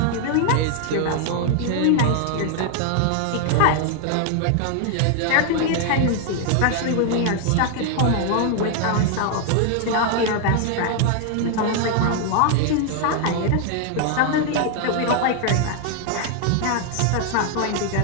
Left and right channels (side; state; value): both; different; correlation 0.00